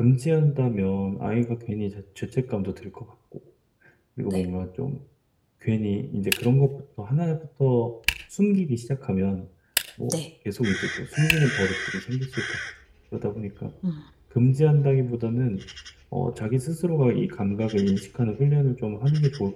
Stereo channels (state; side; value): identical; both; correlation 1.00